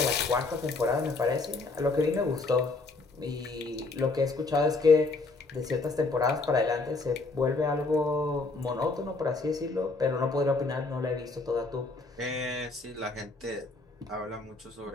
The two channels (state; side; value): quieter; right; 3.6 dB